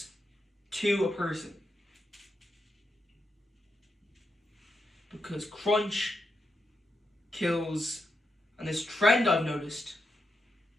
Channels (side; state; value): both; normal; correlation 0.85